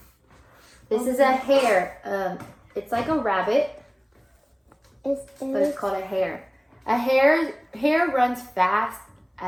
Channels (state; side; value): identical; both; correlation 1.00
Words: This is a hare. It's like a rabbit, but it's called a hare. A hare runs fast